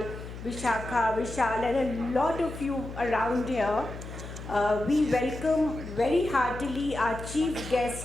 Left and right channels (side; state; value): left; noise; hum, 11 dB below the sound